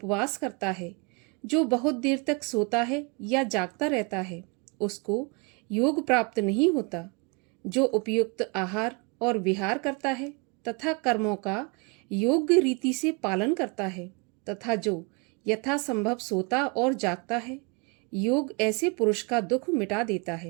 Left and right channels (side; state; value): left; quieter; 30.6 dB